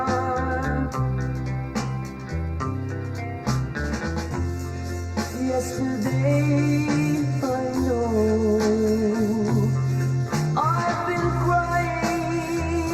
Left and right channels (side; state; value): both; identical; correlation 1.00